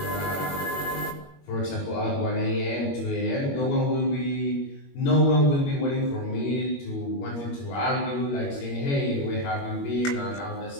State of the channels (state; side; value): late; right; 21 ms